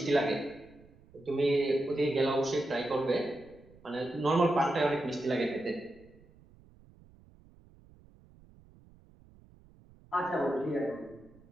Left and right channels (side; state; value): right; noise; rumble, 26 dB below the sound